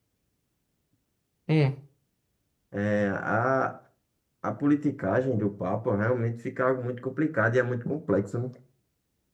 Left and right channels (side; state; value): both; identical; correlation 1.00